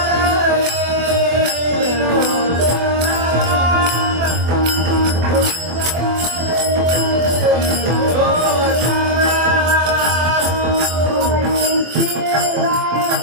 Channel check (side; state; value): left; late; 24 ms